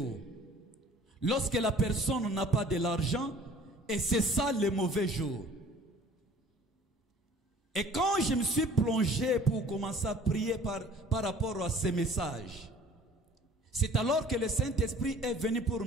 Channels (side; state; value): both; normal; correlation 0.50